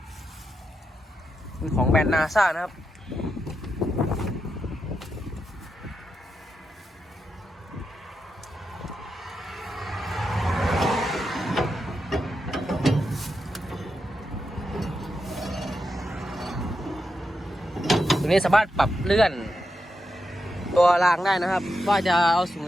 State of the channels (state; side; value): normal; both; correlation 0.86